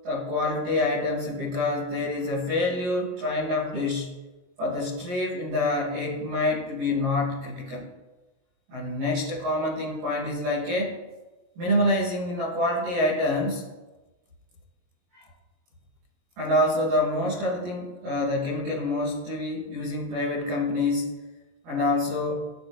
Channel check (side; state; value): left; late; 22 ms